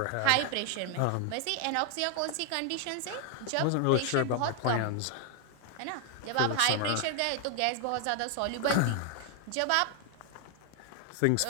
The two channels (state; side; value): different; both; correlation 0.00